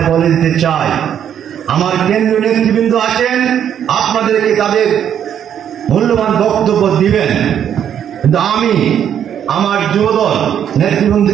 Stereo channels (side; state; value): left; quieter; 9.3 dB